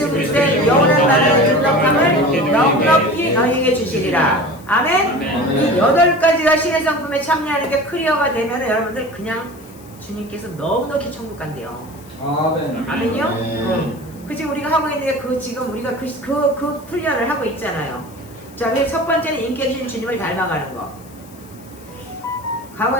그리스도의 영원한 나라의 존귀함을 넉넉히 너희에게 주시리라. 아멘? 이 8가지가 신의 성품에 참여하는 게 클리어가 되면 여러분들 그냥 주님께서 넉넉히 천국 간대요. 아멘. 아멘이요? 그치, 우리가 하고 있는 게 지금 우리가 그 훈련을 하고 있잖아요. 자, 그래서 첫 번째는 인격 있는 주님을 닮아가는 거.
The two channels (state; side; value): noise; left; hiss, 24 dB below the sound